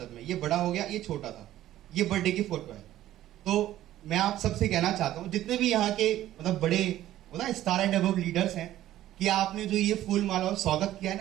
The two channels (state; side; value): quieter; left; 13.5 dB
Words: मैं, ये बड़ा हो गया, ये छोटा था, ये बर्थडे की फोटो है। तो मैं आप सबसे कहना चाहता हूँ, जितने भी यहाँ के मतलब बड़े स्टार एंड अबव लीडर्स हैं, कि आपने जो ये फूल माला और स्वागत किया